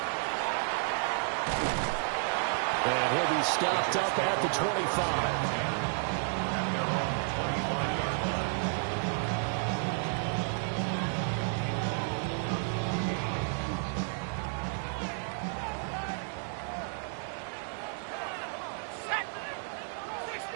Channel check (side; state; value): left; silent; 57 dB below the other